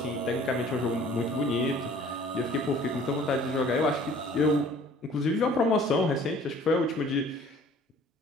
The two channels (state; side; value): normal; both; correlation 0.52